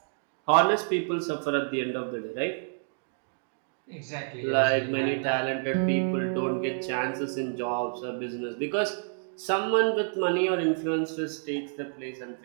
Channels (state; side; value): silent; left; digital silence